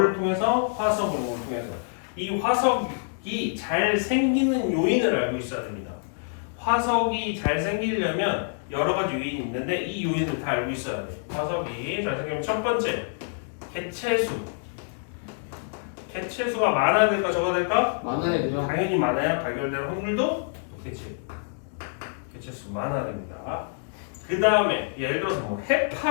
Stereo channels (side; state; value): right; silent; digital silence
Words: 통해서? 화석 연구를 통해서. 이 화석이 잘 생기는 요인을 알고 있어야 됩니다. 화석이 잘 생기려면 여러 가지 요인이 있는데 이 요인을 다 알고 있어야 돼. 화석이 잘 생기면 첫 번째, 개체수. 개체수가 많아야 될까 적어야 될까? 많아야 되죠. 당연히 많아야 발견될 확률도 높겠지. 개체수 많아야 됩니다. 그 다음에 예를 들어서 뭐